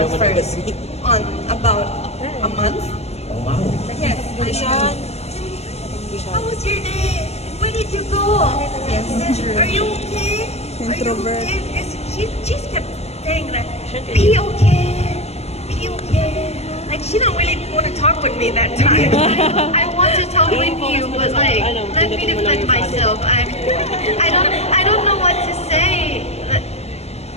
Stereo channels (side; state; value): right; late; 0.30 ms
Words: first on about a month. Oh wow. Yes, I said, how was your day? Where did you go? Yes, true. Are you okay? Are you Introvert. okay? Because she just kept saying that, be okay, be okay. Like she don't really want to talk with me that time. I want to talk with you, but like, let me defend myself. I don't know what to say.